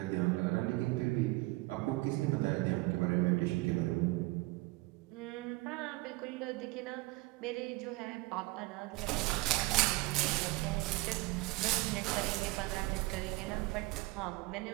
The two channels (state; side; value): quieter; left; 22.2 dB